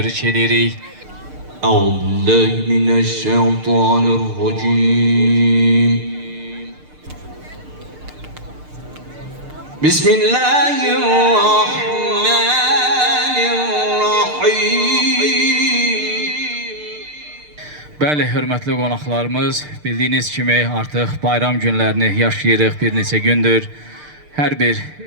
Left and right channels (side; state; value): left; late; 6.7 ms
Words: edirik. Euzubillahimineşşeytanirracim. Bismillahirrahmanirrahim. Bəli, hörmətli qonaqlarımız, bildiyiniz kimi artıq bayram günlərini yaşayırıq bir neçə gündür. Hər bir